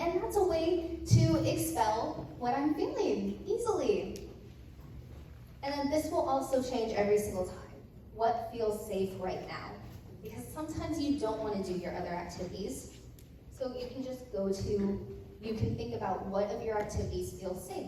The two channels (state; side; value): identical; both; correlation 1.00